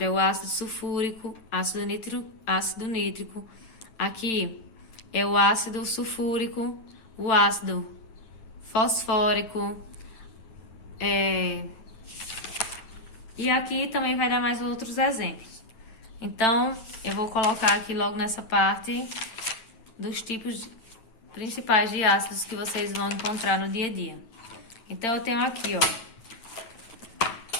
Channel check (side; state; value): right; late; 9.3 ms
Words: é o ácido sulfúrico, ácido nítrico. Aqui é o ácido sulfúrico, o ácido fosfórico. E aqui também vai dar mais outros exemplos. Então, eu vou colocar aqui logo nessa parte dos tipos principais de ácidos que vocês vão encontrar no dia a dia. Então, eu tenho aqui, ó,